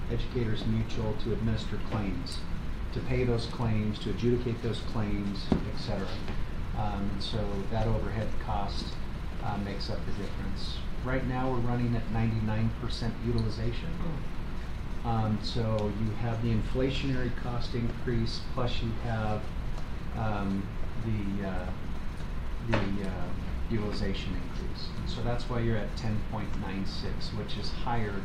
Educators Mutual to administer claims, to pay those claims, to adjudicate those claims, et cetera. And so that overhead cost makes up the difference. Right now we're running at 99% utilization. So you have the inflationary cost increase, plus you have the utilization increase. And so that's why you're at 10.96, which is higher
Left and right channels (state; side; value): identical; both; correlation 1.00